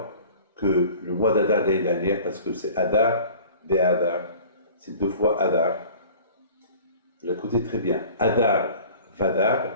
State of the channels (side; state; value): both; inverted; correlation -0.45